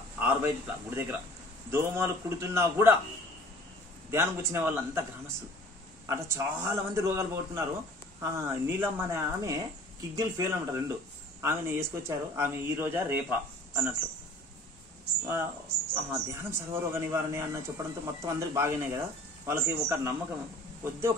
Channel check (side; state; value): both; normal; correlation 0.49